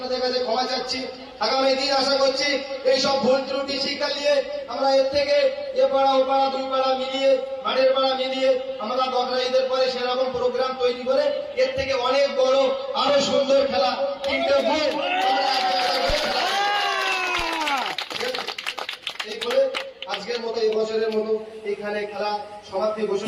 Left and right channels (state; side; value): identical; both; correlation 1.00